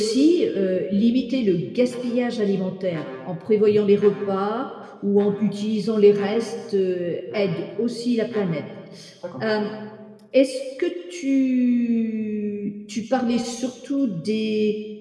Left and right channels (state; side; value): identical; both; correlation 1.00